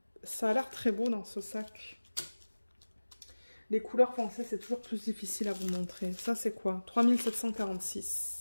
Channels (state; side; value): inverted; both; correlation -1.00